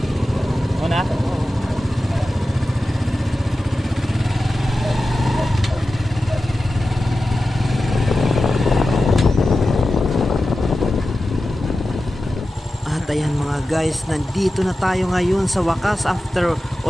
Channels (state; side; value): normal; both; correlation 0.93